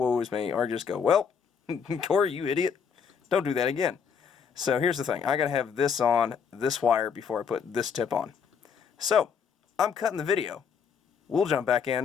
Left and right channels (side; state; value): right; quieter; 6.7 dB